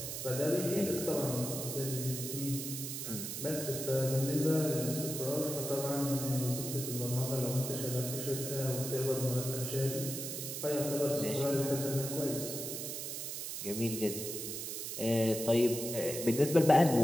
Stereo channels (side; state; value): right; noise; hiss, 5 dB below the sound